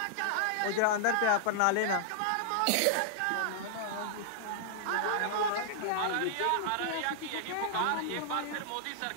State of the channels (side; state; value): both; different; correlation -0.01